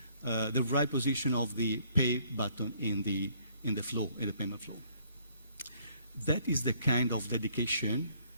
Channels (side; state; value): both; inverted; correlation -0.64